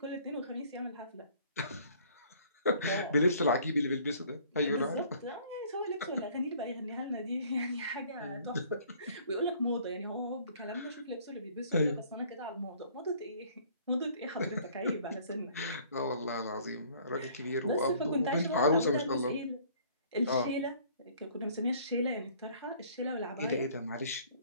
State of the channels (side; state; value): both; inverted; correlation -0.56